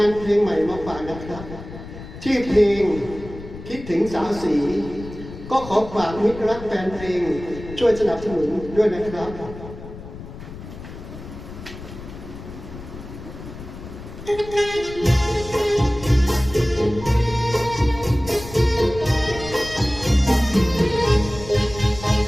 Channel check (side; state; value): left; noise; rumble, 13 dB below the sound